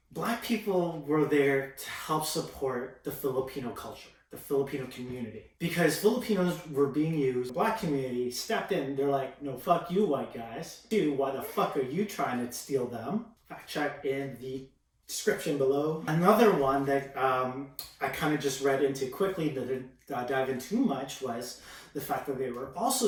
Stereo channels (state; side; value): identical; both; correlation 1.00